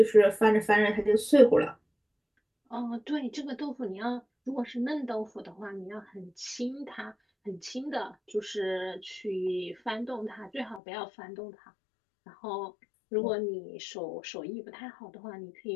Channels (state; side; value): drops out; right; at 10.8 s